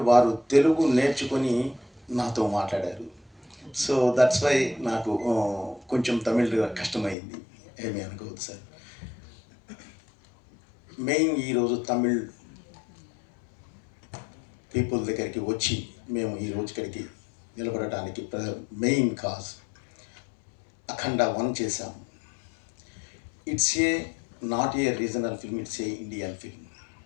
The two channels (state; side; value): drops out; right; at 7.2 s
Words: వారు తెలుగు నేర్చుకొని నాతో మాట్లాడారు. సో దట్స్ వై నాకు కొంచెం తమిళ్ కష్టమైంది, ఏమీ అనుకోవద్దు సార్. మెయిన్ ఈరోజు తమిళ్ పీపుల్ దగ్గరికి వచ్చి మేము ఈరోజు ఇక్కడికి నిలబడటానికి మెయిన్ కాజ్ అఖండ 1 చేశాము. It's a not a regional film, it's a Indian film.